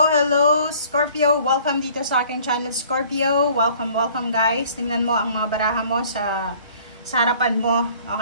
Scorpio. Welcome dito sa aking channel Scorpio. Welcome guys. Tingnan mo ang mga baraha mo sa harapan mo.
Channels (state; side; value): inverted; both; correlation -0.54